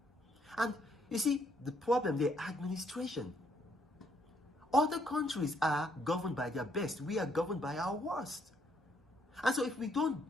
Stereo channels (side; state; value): both; normal; correlation 0.70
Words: And you see, the problem, the administration. Other countries are governed by their best. We are governed by our worst. And so if we